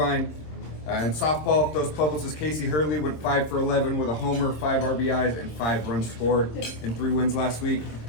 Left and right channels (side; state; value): right; late; 26 ms